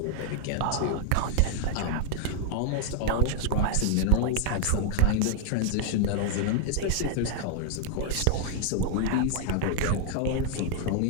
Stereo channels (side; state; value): both; different; correlation -0.01